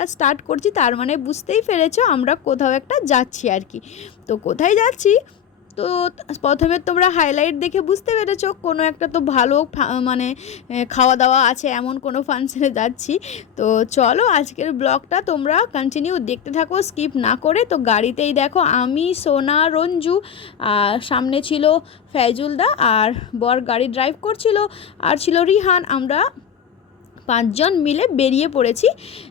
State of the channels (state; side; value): quieter; right; 8.5 dB